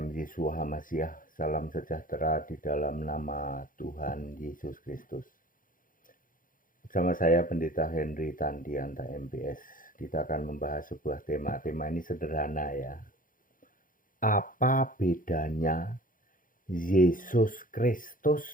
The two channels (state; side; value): late; right; 0.40 ms